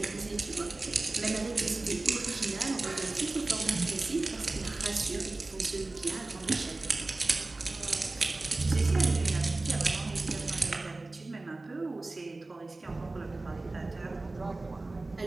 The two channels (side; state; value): left; quieter; 3.1 dB